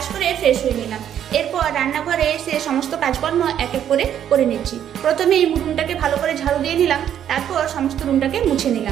করে ফ্রেশ হয়ে নিলাম। এরপর রান্নাঘরে এসে সমস্ত কাজকর্ম এক এক করে নিচ্ছি। প্রথমে এই রুমটাকে ভালো করে ঝাড়ু দিয়ে নিলাম, তারপর সমস্ত রুমটাকে মুছে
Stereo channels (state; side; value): quieter; left; 9.9 dB